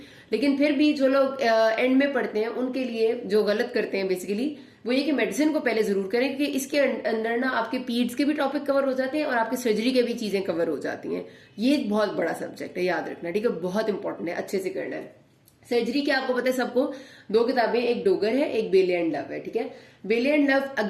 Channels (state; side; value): identical; both; correlation 1.00